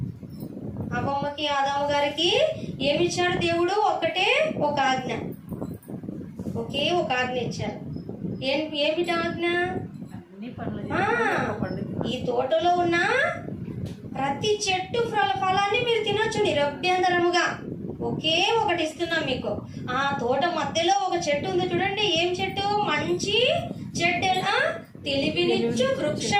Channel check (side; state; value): both; identical; correlation 1.00